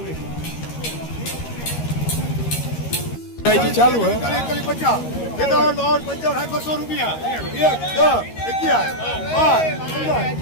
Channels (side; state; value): right; late; 13 ms